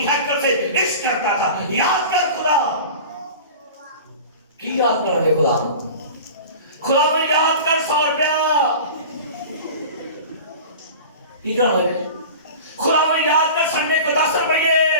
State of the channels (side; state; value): both; inverted; correlation -0.37